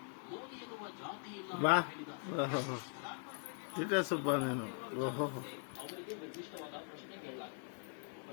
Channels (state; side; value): silent; right; 50 dB below the other